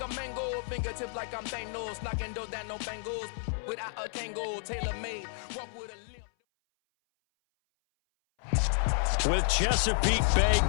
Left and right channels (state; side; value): silent; right; 57 dB below the other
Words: a mango, fingertips like I'm Thanos, knocking those down no bangles. Without a Kango, tailor-made, walk with a limp. With Chesapeake Bay